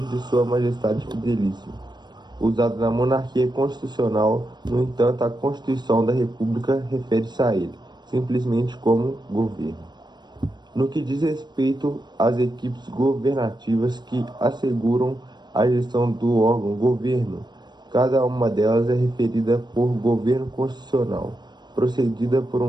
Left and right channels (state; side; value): late; left; 0.21 ms